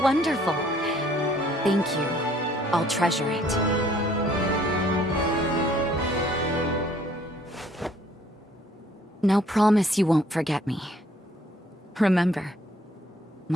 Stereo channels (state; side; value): normal; both; correlation 0.61